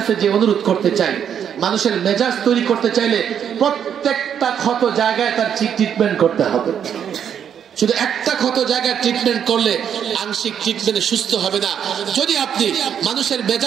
যে অনুরোধ করতে চাই, মানুষের মেজাজ তৈরি করতে চাইলে প্রত্যেকটা ক্ষত জায়গায় তার ট্রিটমেন্ট করতে হবে। শুধু একটা ক্ষত জায়গায় ট্রিটমেন্ট করলে আংশিক ট্রিটমেন্টে সুস্থ হবে না। যদি আপনি মানুষের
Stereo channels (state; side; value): quieter; left; 8.5 dB